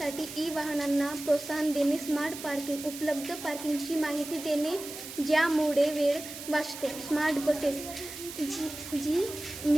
ई वाहनांना प्रोत्साहन देणे, स्मार्ट पार्किंग, उपलब्ध पार्किंगची माहिती देणे ज्यामुळे वेळ वाचतो, स्मार्ट बसेस,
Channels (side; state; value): right; noise; hiss, 11 dB below the sound